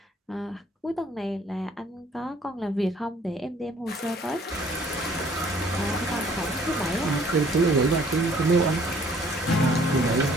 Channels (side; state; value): both; normal; correlation 0.58